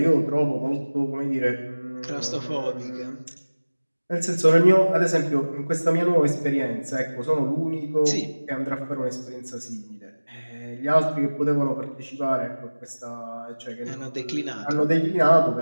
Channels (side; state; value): both; inverted; correlation -1.00